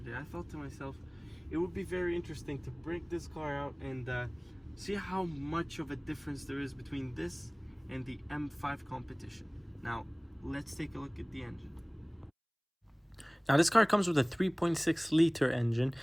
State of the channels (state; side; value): identical; both; correlation 1.00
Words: I thought to myself it would be very interesting to break this car out and see how much of a difference there is between this and the M5 competition. Now, let's take a look at the engine. Now this car comes with a 3.6 liter engine,